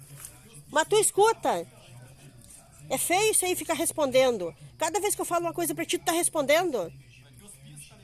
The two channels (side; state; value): both; identical; correlation 1.00